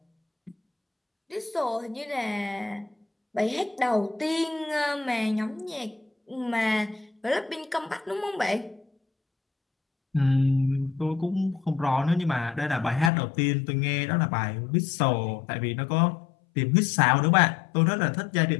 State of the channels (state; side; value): drops out; right; at 13.1 s